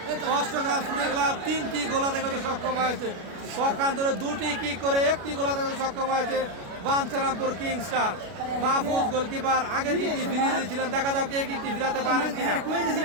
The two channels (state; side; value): late; left; 33 ms